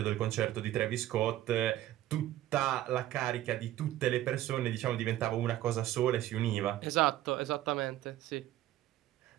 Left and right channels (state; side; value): quieter; left; 13.9 dB